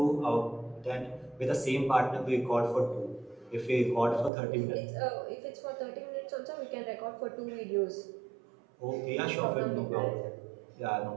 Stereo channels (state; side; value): drops out; left; at 4.3 s